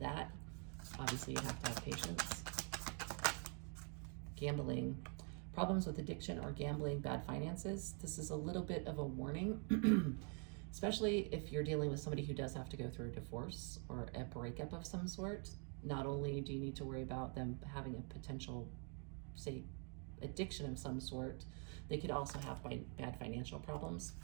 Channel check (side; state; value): left; quieter; 39.9 dB